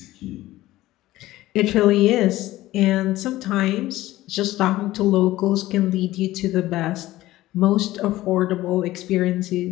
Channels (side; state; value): right; quieter; 16.3 dB